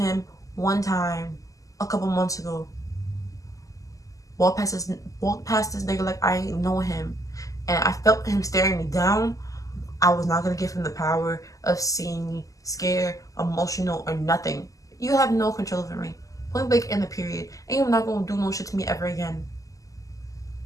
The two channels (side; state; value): right; late; 0.16 ms